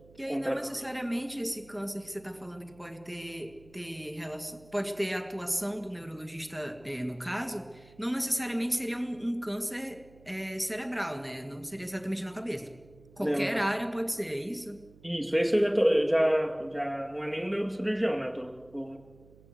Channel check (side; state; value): right; noise; hum, 24 dB below the sound